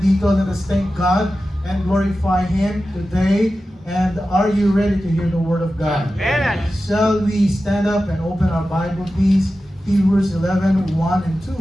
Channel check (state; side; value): normal; both; correlation 0.93